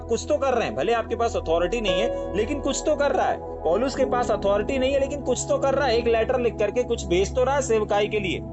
कुछ तो कर रहे हैं, भले आपके पास अथॉरिटी नहीं है, लेकिन कुछ तो कर रहा है। पौलुस के पास अथॉरिटी नहीं है, लेकिन कुछ तो कर रहा है, एक लेटर लिख करके कुछ भेज तो रहा है सेवकाई के लिए।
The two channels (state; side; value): identical; both; correlation 1.00